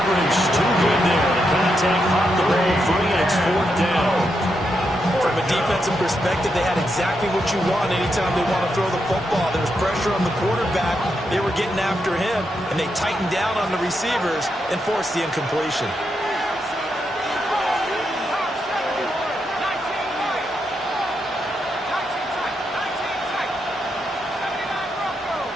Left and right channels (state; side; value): normal; both; correlation 0.83